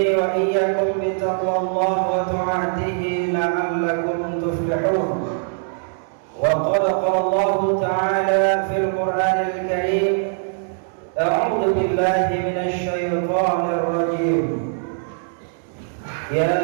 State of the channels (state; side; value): silent; left; digital silence